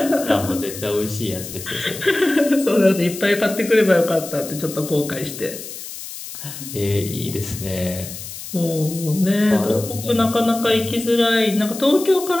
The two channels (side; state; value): left; noise; hiss, 11 dB below the sound